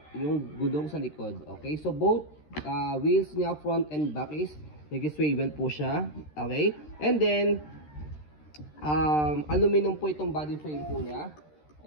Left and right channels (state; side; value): late; right; 13 ms